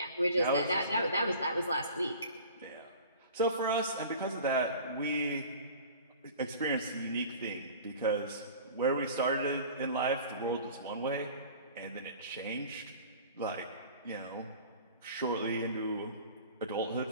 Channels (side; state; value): both; inverted; correlation -0.42